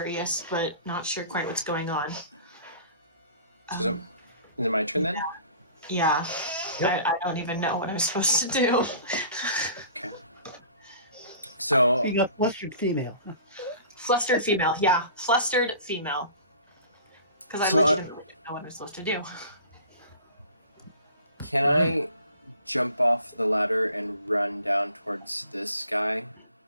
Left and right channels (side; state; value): both; inverted; correlation -0.46